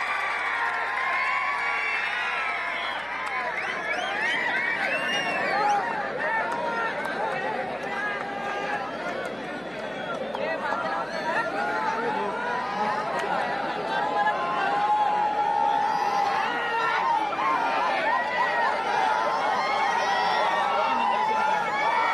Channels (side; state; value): right; noise; hum, 28 dB below the sound